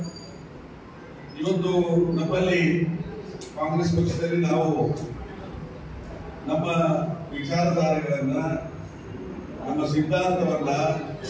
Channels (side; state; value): both; identical; correlation 1.00